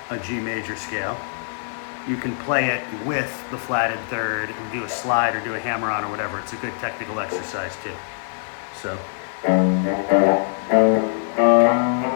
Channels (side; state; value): right; silent; digital silence